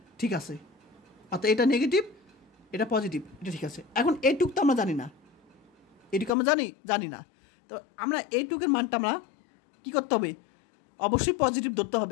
ঠিক আছে, অর্থাৎ এটা নেগেটিভ এটা পজিটিভ, এটা ঠিক আছে। এখন এইটুক তো আমরা জানি না, এইটুকু আমরা জানি না, তো আমরা এইটুকের মানটা আমরা কী করতে হবে, অবশ্যই পজিটিভ ধরতে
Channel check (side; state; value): right; drops out; at 6.3 s